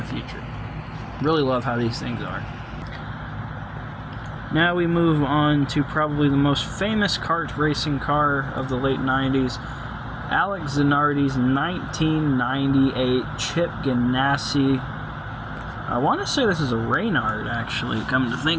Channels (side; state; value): both; identical; correlation 1.00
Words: future. Really love how these things are. Now we move on to probably the most famous kart racing car of the late 90s. Alex Zanardi's 1998 Chip Ganassi. I want to say this is a Reynard, actually, come to